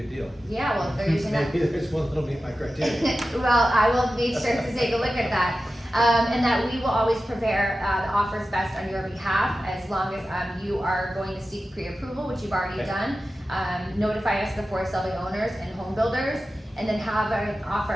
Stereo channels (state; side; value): normal; both; correlation 0.93